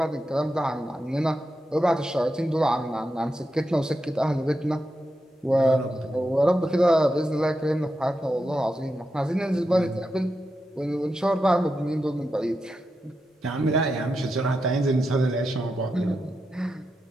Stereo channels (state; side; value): normal; both; correlation 0.87